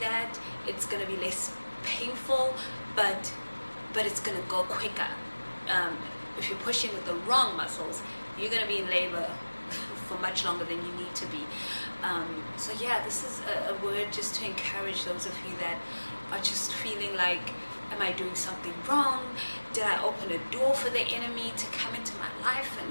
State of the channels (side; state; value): both; inverted; correlation -1.00